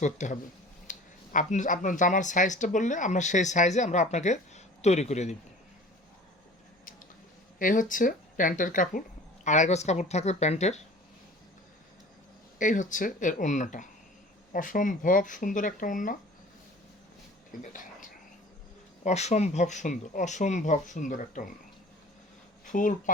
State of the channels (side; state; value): both; normal; correlation 0.44